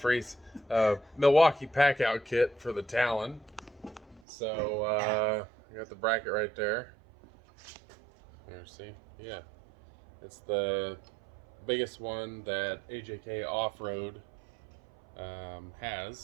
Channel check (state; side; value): drops out; left; at 4.2 s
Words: Milwaukee Packout kit for the Talon. So I got the bracket right there. There, see? Yeah, it's the biggest one that AJK Offroad